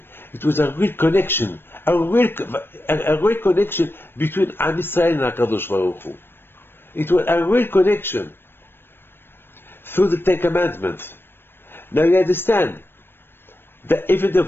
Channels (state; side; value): late; right; 0.10 ms